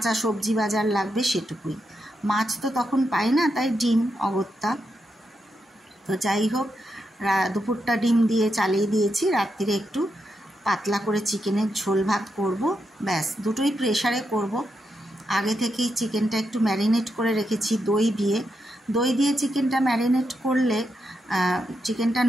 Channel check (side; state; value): both; normal; correlation 0.84